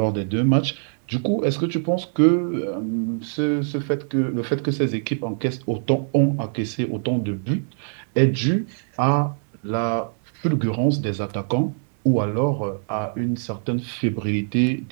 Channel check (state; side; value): silent; left; digital silence